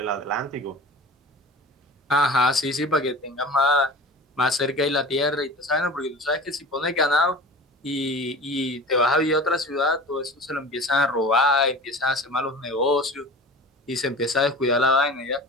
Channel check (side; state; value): both; normal; correlation 0.37